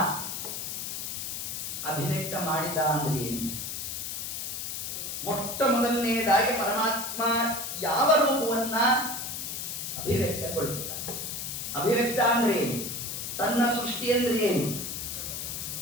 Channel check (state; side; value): noise; left; hiss, 5 dB below the sound